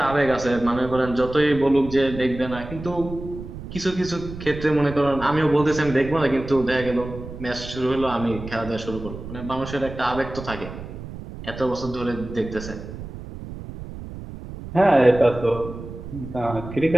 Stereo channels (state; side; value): noise; right; rumble, 11 dB below the sound